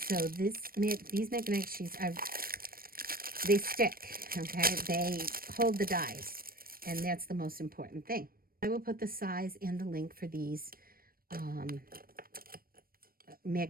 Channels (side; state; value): left; late; 0.43 ms